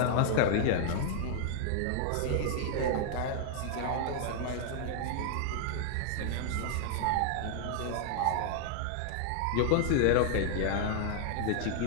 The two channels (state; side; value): different; both; correlation 0.00